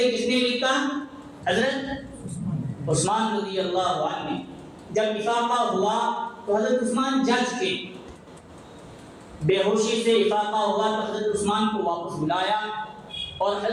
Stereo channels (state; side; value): identical; both; correlation 1.00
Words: کس نے لکھا؟ حضرت عثمان رضی اللہ عنہ نے۔ جب افاقہ ہوا تو حضرت عثمان جج کے، بے ہوشی سے افاقہ ہوا تو حضرت عثمان کو واپس بلایا اور